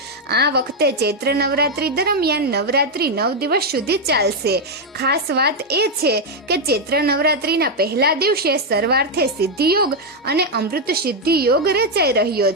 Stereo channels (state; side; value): normal; both; correlation 0.02